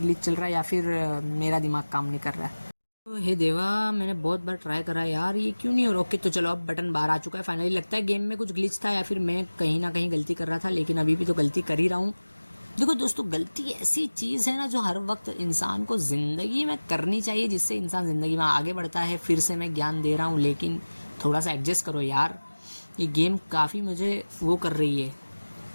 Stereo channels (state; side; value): inverted; both; correlation -1.00